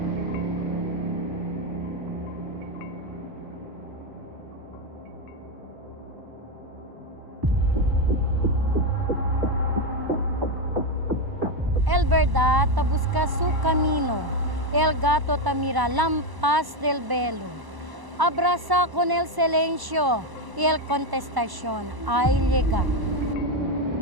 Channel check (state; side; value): late; left; 1.0 ms